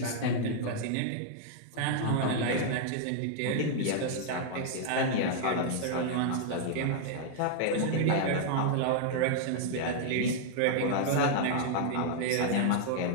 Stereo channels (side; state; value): both; different; correlation -0.01